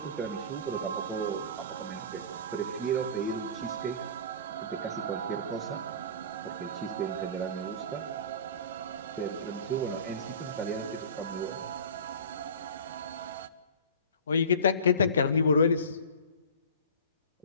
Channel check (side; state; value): both; inverted; correlation -0.36